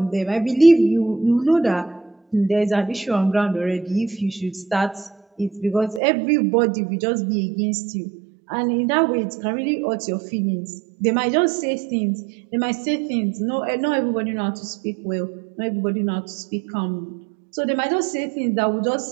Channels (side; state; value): left; drops out; at 6.0 s